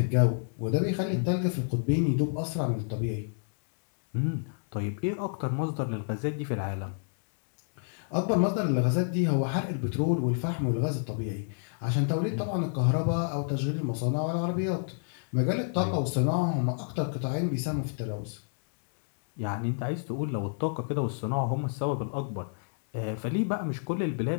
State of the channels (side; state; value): right; silent; digital silence